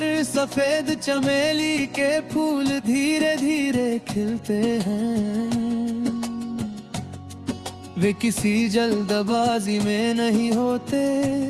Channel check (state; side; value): identical; both; correlation 1.00